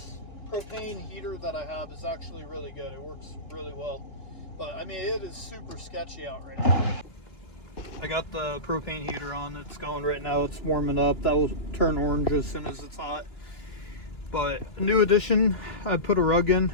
propane heater that I have is actually really good. It works really well. But I mean, it is super sketchy out right now. I got the propane heater on. It's going right now. It's warming up. That will turn orange as soon as it's hot. But a new addition, I put a rug in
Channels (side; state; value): right; late; 2.9 ms